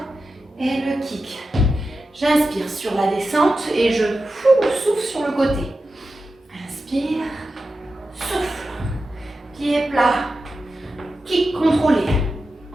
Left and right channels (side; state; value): both; normal; correlation 0.91